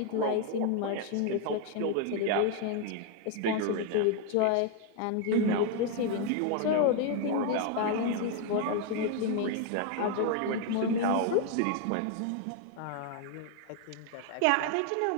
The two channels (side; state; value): both; different; correlation 0.01